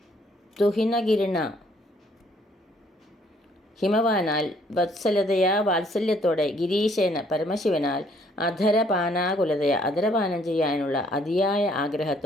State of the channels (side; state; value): both; normal; correlation 0.64